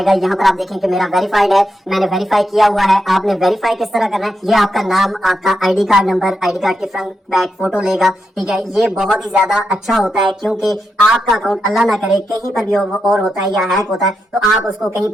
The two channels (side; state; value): both; normal; correlation 0.85